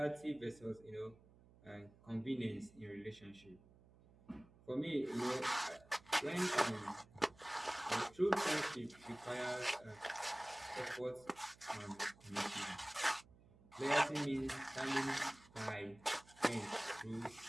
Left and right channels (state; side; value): noise; right; hum, 25 dB below the sound